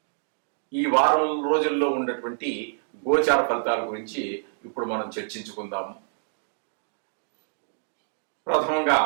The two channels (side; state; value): left; silent; digital silence